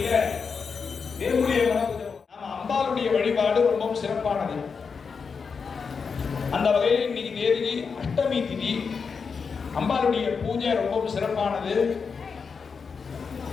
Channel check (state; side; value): quieter; right; 5.5 dB